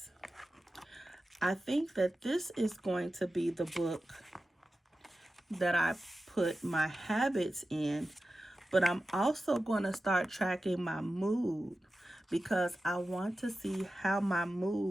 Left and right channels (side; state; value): both; normal; correlation 0.93